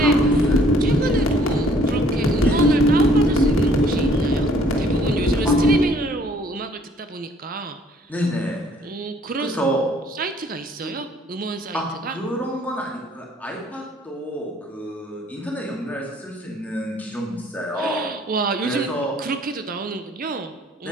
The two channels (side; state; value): both; normal; correlation 0.60